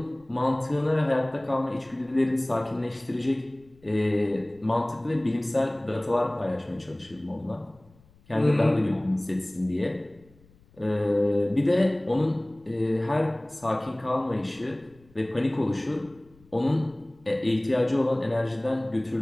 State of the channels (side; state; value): left; noise; rumble, 29 dB below the sound